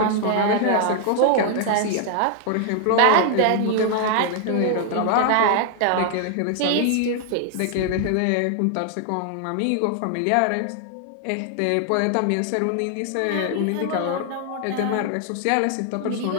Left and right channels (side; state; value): both; different; correlation 0.00